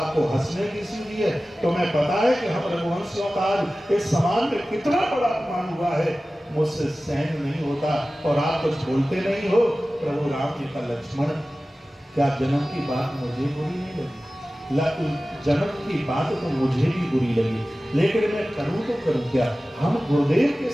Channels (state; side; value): normal; both; correlation 0.96